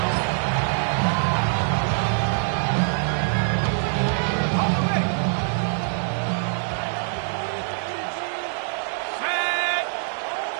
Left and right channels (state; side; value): silent; left; 62 dB below the other